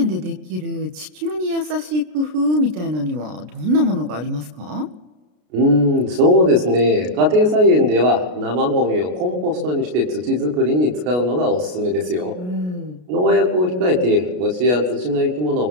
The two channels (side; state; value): left; late; 33 ms